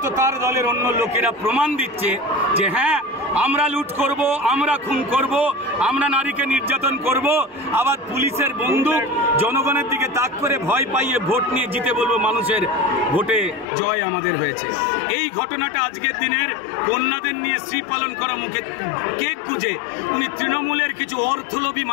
তার দলের অন্য লোকেরা প্রমাণ দিচ্ছে যে হ্যাঁ আমরা লুট করব, আমরা খুন করব, আমরা নারীকে নির্যাতন করব, আবার পুলিশের বন্দুক জনগণের দিকে তাক করে ভয় পাইয়ে ভোট নিয়ে জিতে বলবো মানুষের ভোটে জয় আমাদের হয়েছে। এই ঘটনাটা আজকের দিনের কন্যাদের নিয়ে শ্রী পালন করা মুখে কেক গুজে উনি তৃণমূলের কিছু অর্থলোভী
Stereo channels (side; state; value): right; drops out; at 13.7 s